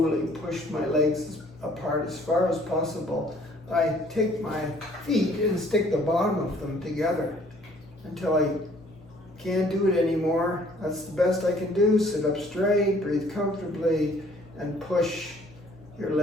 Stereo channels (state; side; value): noise; left; hum, 24 dB below the sound